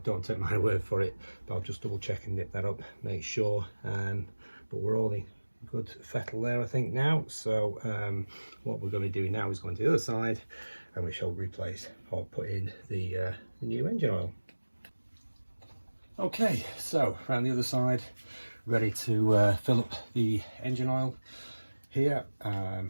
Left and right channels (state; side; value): inverted; both; correlation -1.00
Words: don't take my word for it, but I'll just double check and nip that up, make sure. But we're all in good fettle there, I think, now. So what we're going to be doing now is going to the other side, and we shall replace or put in the new engine oil. Okay, so around the other side, ready to fill up the engine oil here.